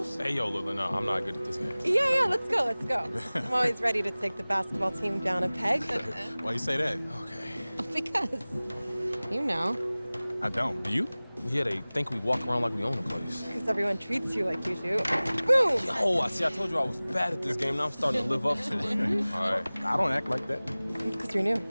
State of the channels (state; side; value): inverted; both; correlation -0.99